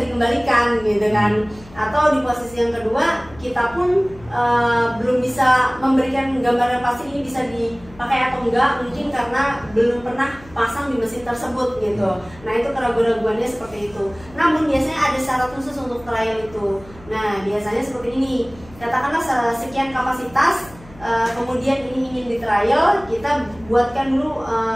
dikembalikan gitu kan. Atau di posisi yang kedua kita pun belum bisa memberikan gambaran pasti ini bisa dipakai atau enggak, mungkin karena belum pernah pasang di mesin tersebut gitu. Nah itu keraguan-raguannya seperti itu. Namun biasanya ada syarat khusus untuk trial itu. Nah biasanya seperti ini, katakanlah sekian kapasitas, kemudian ini ingin di trial, kita buatkan dulu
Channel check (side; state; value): left; noise; hum, 22 dB below the sound